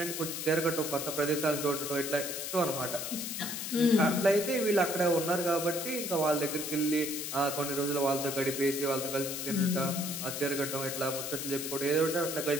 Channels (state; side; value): noise; left; hiss, 5 dB below the sound